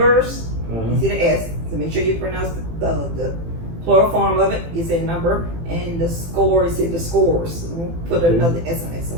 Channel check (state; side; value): late; left; 18 ms